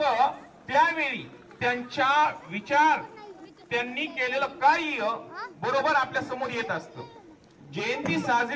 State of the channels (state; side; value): identical; both; correlation 1.00